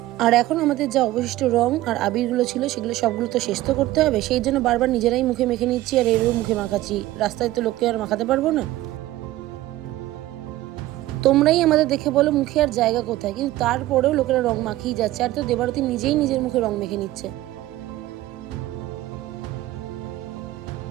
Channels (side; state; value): left; quieter; 16.1 dB